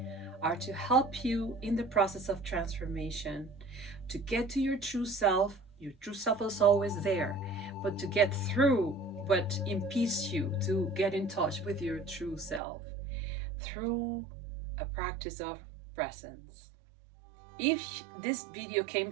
are to help you in the process of transformation, to get to your true self. Your true self is always there, but to get through what impedes you to get in touch with your true self through a practice of presence. If this video came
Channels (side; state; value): left; drops out; at 12.6 s